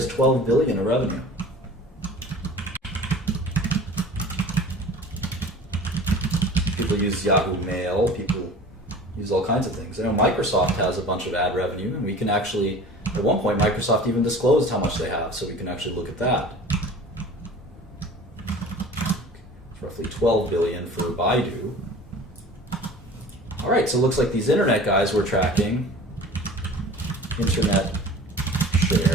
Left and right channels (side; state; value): both; normal; correlation 0.42